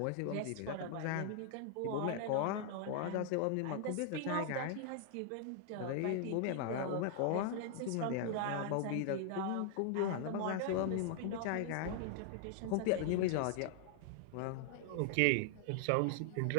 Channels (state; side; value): different; both; correlation 0.00